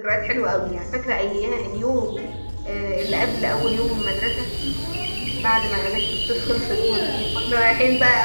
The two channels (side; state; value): both; inverted; correlation -1.00